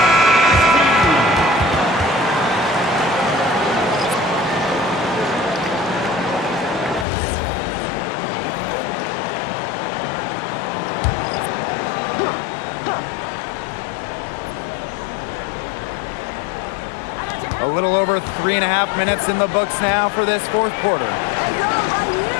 A little over 3.5 minutes in the books now for this fourth quarter.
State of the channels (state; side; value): drops out; right; at 7.1 s